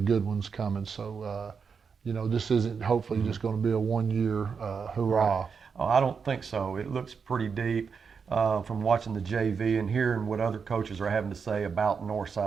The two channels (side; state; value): left; quieter; 5.9 dB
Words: ones coming. So, this isn't hopefully just going to be a one-year hurrah. Right. Oh, I don't think so. It looks pretty deep from watching the JV and hearing what other coaches are having to say about